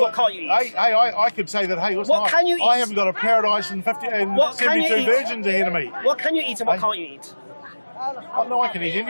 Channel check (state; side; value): inverted; both; correlation -1.00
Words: what can't you eat? I could say that, hey, listen, can you eat? I haven't got a paradise and 72 virgins ahead of me. What can you eat and what can't you eat? Oh, no, I can eat